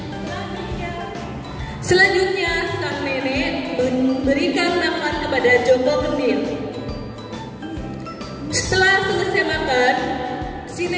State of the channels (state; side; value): identical; both; correlation 1.00